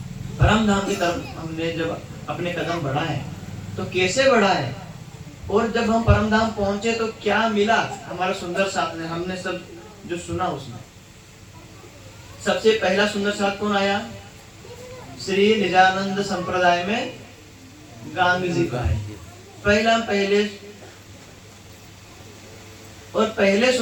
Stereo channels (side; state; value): both; identical; correlation 1.00